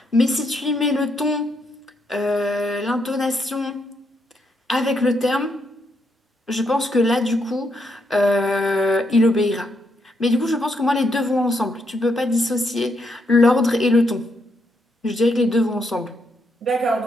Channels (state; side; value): normal; both; correlation 0.78